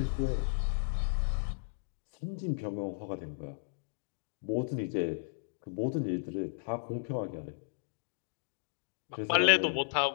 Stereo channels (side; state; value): right; silent; digital silence